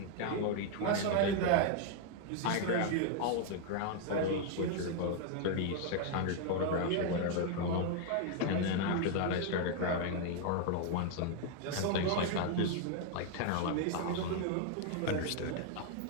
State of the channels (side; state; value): both; different; correlation 0.00